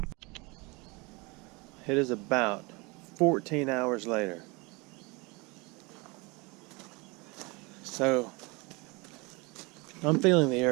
It is about 14 hours later. So, I'm feeling the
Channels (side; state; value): left; quieter; 26.8 dB